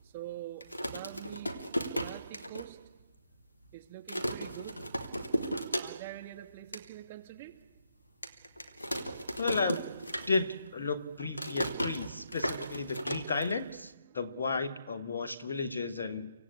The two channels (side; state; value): both; inverted; correlation -0.78